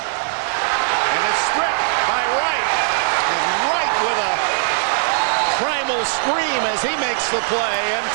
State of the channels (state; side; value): silent; left; digital silence